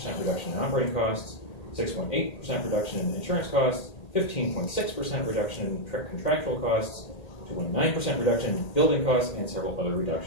reduction in operating costs, 6.8% reduction in insurance costs, 15.6% reduction in contractual costs, 2.9% reduction in building costs, and several other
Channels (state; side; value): late; right; 1.8 ms